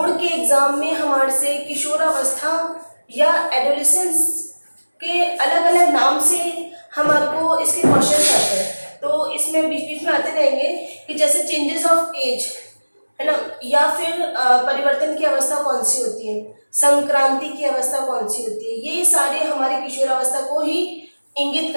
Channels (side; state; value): both; inverted; correlation -1.00